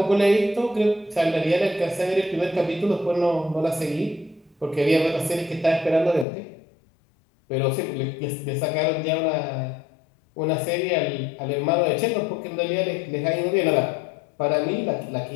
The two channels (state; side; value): drops out; right; at 6.2 s